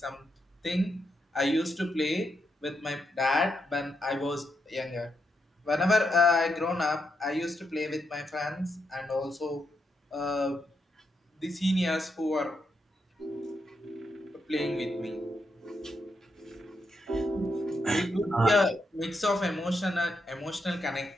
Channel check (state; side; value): normal; both; correlation 0.82